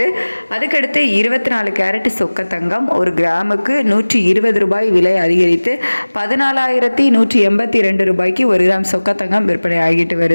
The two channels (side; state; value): both; inverted; correlation -1.00